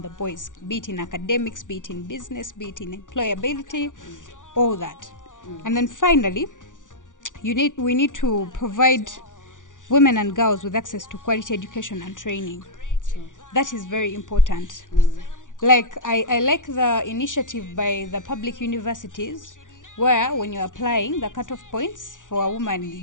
the boys, be it in academics, be it in business, be it in employability, all that. And then finally, we need to provide women and girls with access to quality education and training. That is very important. Like I like the initiative by the public universities, where when you're applying the cutoff points for a woman,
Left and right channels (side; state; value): right; late; 0.87 ms